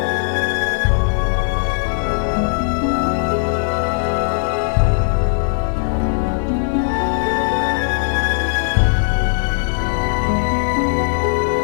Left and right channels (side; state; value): right; silent; 57 dB below the other